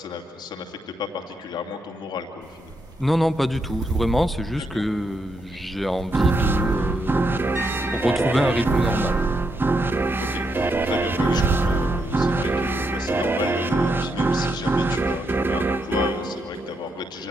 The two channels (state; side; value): normal; both; correlation 0.80